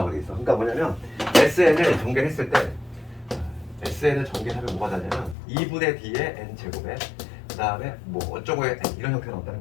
있어. 그러니까 뭐냐면 SN을 전개를 했을 때 SN을 전개하면 뭐가 되냐면 2분의 D의 n 제곱에 그 다음에 뭐 어쩌고의 n 이런 형태가 나온다는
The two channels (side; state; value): right; drops out; at 5.4 s